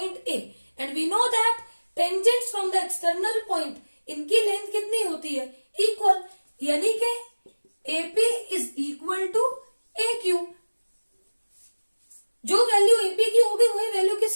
A and we know that tangents from the external point, इनकी लेंथ कितनी होती है? इक्वल, यानी कि AP is equal to AQ। जो वैल्यू AP की होगी वही वैल्यू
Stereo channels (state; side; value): inverted; both; correlation -1.00